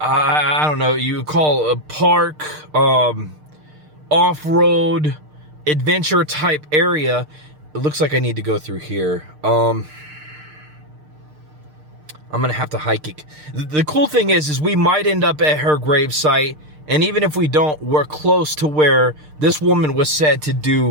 don't know, you would call a park, off-road adventure type area. It looks like I need to go through here. I'm gonna have to hike it. The cool thing is we might end up at her grave site. And even if we don't, we're close to where this woman was said to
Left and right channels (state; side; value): late; left; 6.6 ms